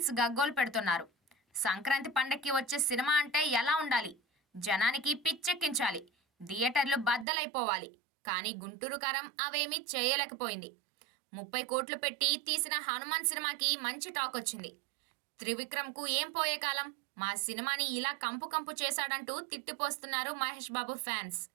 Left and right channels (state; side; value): drops out; left; at 7.2 s